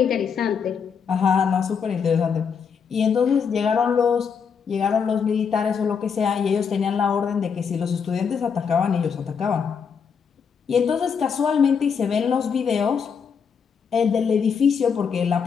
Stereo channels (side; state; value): right; quieter; 6.5 dB